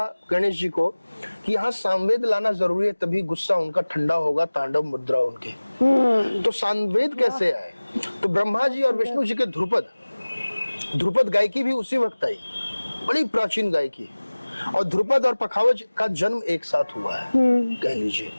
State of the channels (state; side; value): inverted; both; correlation -1.00